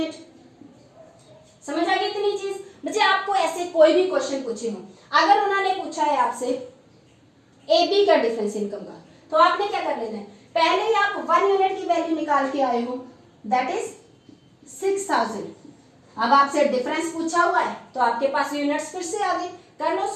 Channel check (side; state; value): both; identical; correlation 1.00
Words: समझ आ गई इतनी चीज? बच्चे आपको ऐसे कोई भी क्वेश्चन पूछे हो, अगर उन्होंने पूछा है आपसे ए बी का डिफरेंस इनकम का, तो आपने क्या कर लेना है, पहले ही आप 1 यूनिट की वैल्यू निकाल के आए हो, दैट इज 6000. अब आपसे डिफरेंस पूछा हुआ है तो आपके पास यूनिट्स फिर से आ गए. कर लो